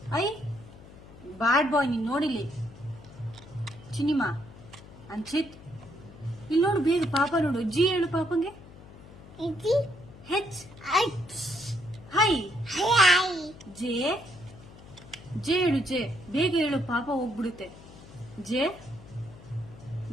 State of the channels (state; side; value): noise; left; hum, 19 dB below the sound